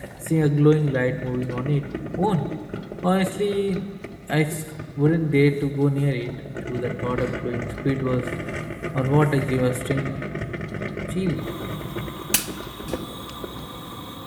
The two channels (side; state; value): both; identical; correlation 1.00